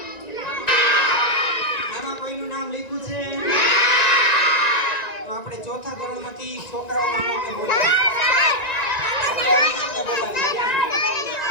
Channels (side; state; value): right; late; 1.9 ms